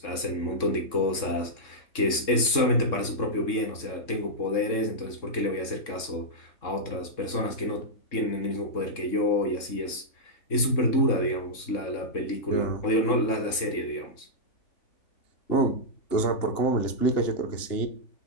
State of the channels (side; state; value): right; late; 3.6 ms